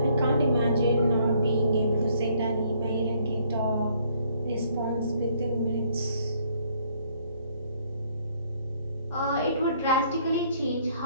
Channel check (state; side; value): inverted; both; correlation -0.65